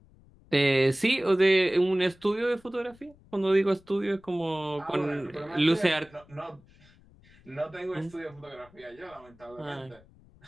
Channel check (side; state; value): left; noise; rumble, 27 dB below the sound